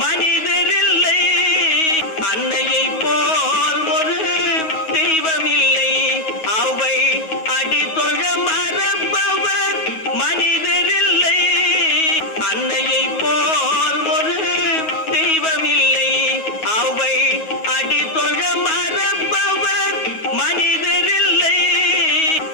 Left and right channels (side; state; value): right; late; 9.4 ms